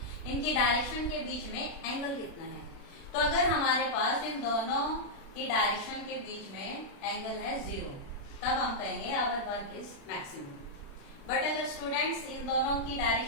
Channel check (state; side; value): late; right; 36 ms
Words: इनकी डायरेक्शन के बीच में एंगल कितना है। तो अगर हमारे पास इन दोनों की डायरेक्शन के बीच में एंगल है जीरो, तब हम कहेंगे our work is maximum. But अगर स्टूडेंट्स इन दोनों की